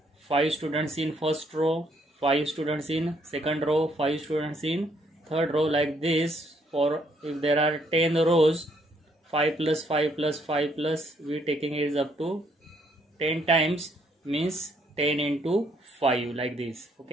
5 students in first row, 5 students in second row, 5 students in third row, like this. For if there are 10 rows, 5 plus 5 plus 5 plus, we taking it is up to 10 times, means 10 into 5, like this.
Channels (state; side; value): normal; both; correlation 0.70